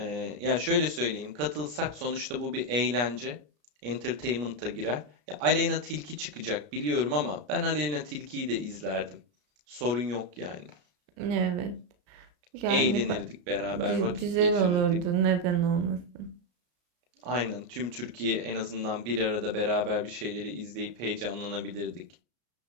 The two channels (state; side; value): late; left; 33 ms